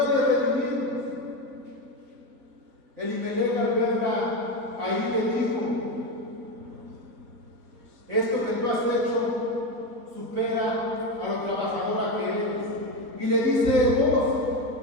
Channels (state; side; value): late; left; 4.1 ms